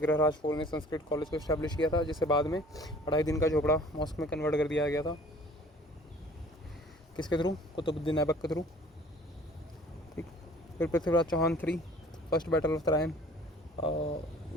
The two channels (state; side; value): normal; both; correlation 0.51